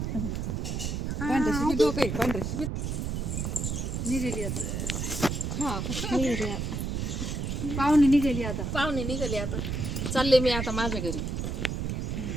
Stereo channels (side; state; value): right; noise; rumble, 2 dB below the sound